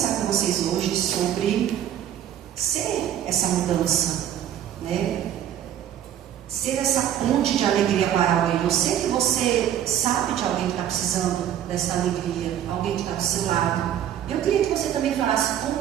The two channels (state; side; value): quieter; left; 10.5 dB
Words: com vocês hoje sobre ser essa mudança, né? Ser essa ponte de alegria para alguém. Eu sei que você sabe de alguém que está precisando dessa alegria, alguém que está do seu lado. Eu queria que você também falasse